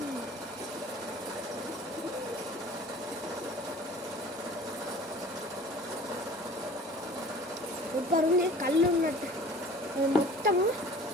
సూపర్ ఉంది. కళ్ళు ఉన్నట్టు మొత్తము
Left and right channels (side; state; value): both; normal; correlation 0.45